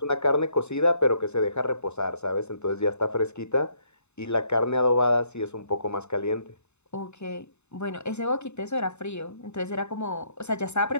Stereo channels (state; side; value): late; right; 0.82 ms